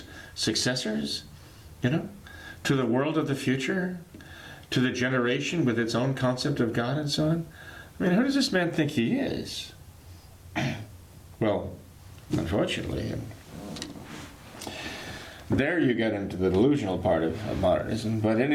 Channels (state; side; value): identical; both; correlation 1.00